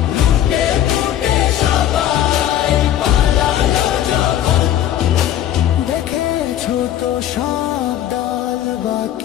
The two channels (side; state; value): right; quieter; 11.5 dB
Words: তো সব দল